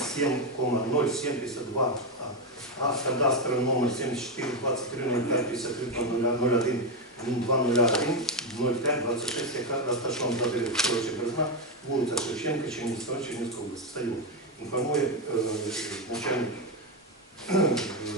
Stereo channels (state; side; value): normal; both; correlation 0.08